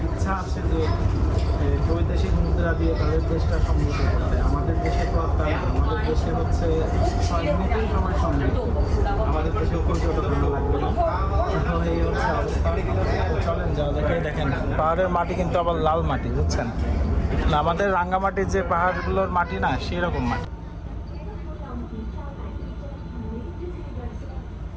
ইচ্ছা আছে যে বৈদেশিক মুদ্রা দিয়ে তাদের দেশটা সমৃদ্ধ করতে। আমাদের দেশে তো আর তাই না, আমাদের দেশে হচ্ছে 6 মিনিটেই সবাই সমৃদ্ধ। পাহাড়ের মাটি কিন্তু আবার লাল মাটি, বুঝছেন? না, আমাদের রাঙ্গামাটির যে পাহাড়গুলোর মাটি না, সেই রকম মাটি।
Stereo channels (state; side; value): identical; both; correlation 1.00